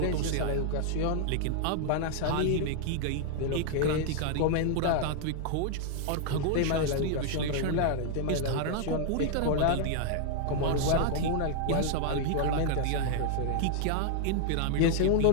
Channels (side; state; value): both; different; correlation -0.01